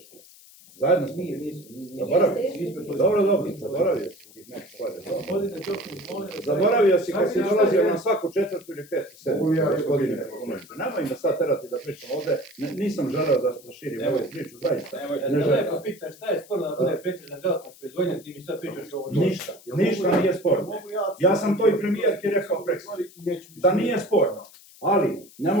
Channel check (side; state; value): left; noise; hiss, 23 dB below the sound